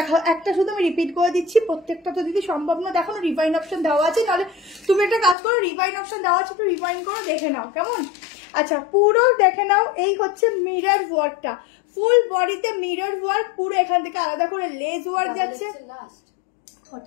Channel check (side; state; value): right; drops out; at 5.4 s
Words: একটা শুধু আমি রিপিট করে দিচ্ছি, প্রত্যেকটা তো দিদি সম্ভব না দেখানো, রিভাইন অপশন দেওয়া আছে, নাহলে তুমি একটা কাজ করো, রিভাইন অপশন দেওয়া আছে একটু রিভাইন করো, দেখে নাও কেমন। আচ্ছা পুরো দেখে নাও, এই হচ্ছে মিরর ওয়ার্কটা, ফুল বডিতে মিরর ওয়ার্ক, পুরো এখান থেকে আলাদা করে লেজ ওয়ার্ক যাচ্ছে,